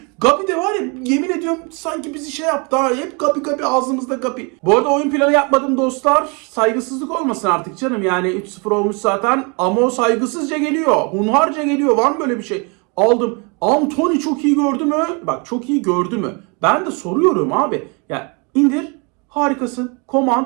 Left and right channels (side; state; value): left; quieter; 32.2 dB